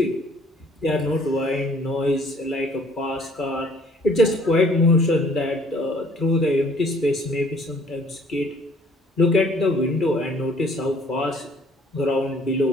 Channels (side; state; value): both; normal; correlation 0.58